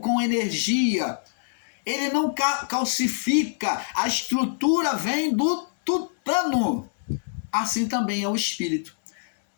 energia. Ele não calcifica. A estrutura vem do tutano. Assim também é o espírito.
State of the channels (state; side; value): silent; right; 62 dB below the other